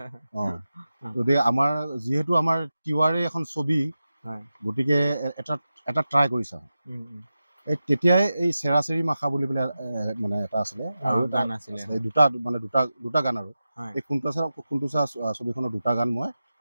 গতিকে আমাৰ যিহেতু আমাৰ তিৱাৰে এখন ছবি, গতিকে এটা ট্ৰাই কৰি চাওঁ। তেতিয়াই এই চেৰাচেৰি মাখা বুলি পেলাই মানে এটা আছিলে আৰু গান আছিলে, দুটা গান আৰু এই ফুণ্টুচা ছবিখনৰ দুটা গান মই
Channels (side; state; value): both; inverted; correlation -0.93